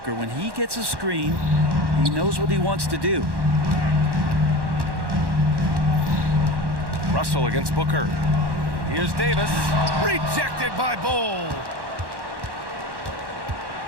When he gets a screen, he knows what he wants to do. Russell against Booker. Here's Davis. Rejected by Bolt.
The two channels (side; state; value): left; late; 1.1 ms